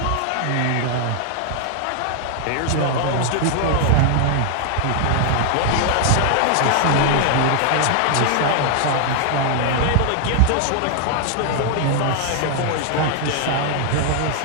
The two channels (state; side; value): different; both; correlation 0.00